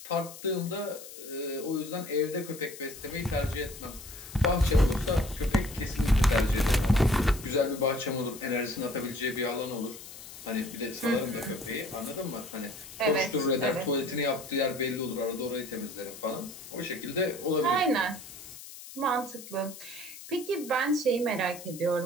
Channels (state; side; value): noise; left; hiss, 14 dB below the sound